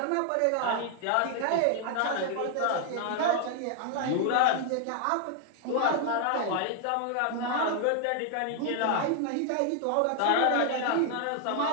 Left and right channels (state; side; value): different; both; correlation 0.00